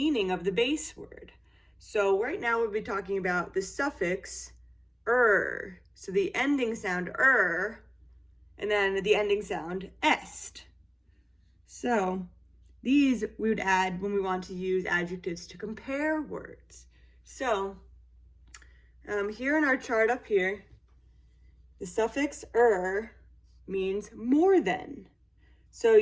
of the base word. So right now we'll be talking about the suffix er. So the ending sound er, and then the ending sound est. So these we would add when we want to use adjectives to compare words. So here in our chart up here, the suffix er means more than. So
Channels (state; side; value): identical; both; correlation 1.00